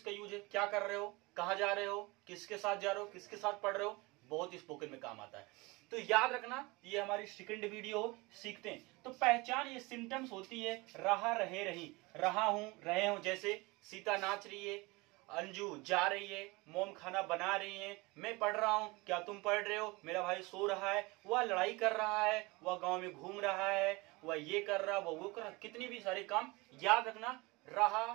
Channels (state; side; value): quieter; left; 24.3 dB